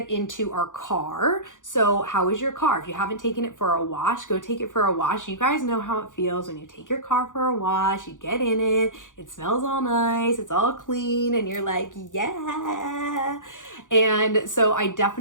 into our car. So how is your car? If you haven't taken it for a wash, go take it for a wash. You guys know how it feels when you take your car for a wash, you get in it, it smells all nice, it's all clean, and you're like, yeah. And so I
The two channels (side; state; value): right; late; 0.87 ms